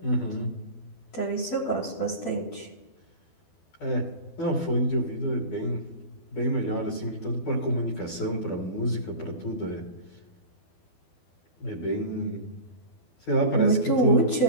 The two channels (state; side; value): late; right; 12 ms